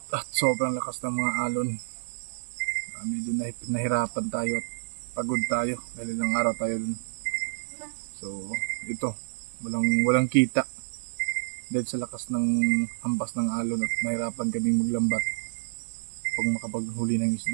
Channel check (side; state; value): left; silent; digital silence